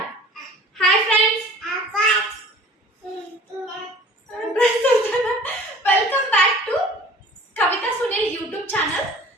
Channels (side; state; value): both; normal; correlation 0.47